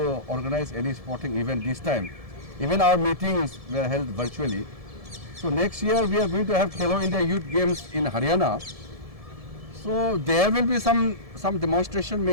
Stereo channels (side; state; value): left; late; 1.7 ms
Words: organize any sporting event this time. Even our meetings were held virtually. So next year we are going to have Khelo India Youth Games in Haryana. So there will be some demonstration.